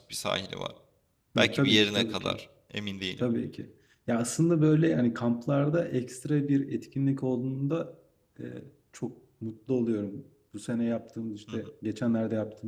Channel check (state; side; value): identical; both; correlation 1.00